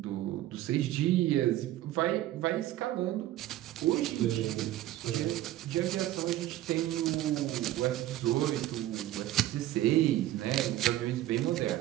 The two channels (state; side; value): quieter; left; 14.4 dB